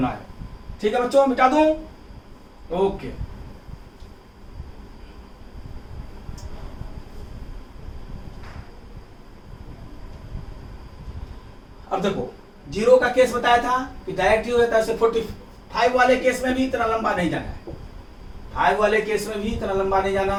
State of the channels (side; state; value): both; identical; correlation 1.00